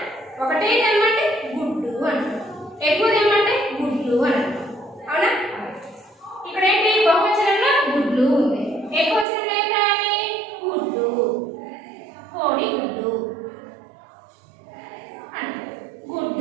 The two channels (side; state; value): left; drops out; at 9.2 s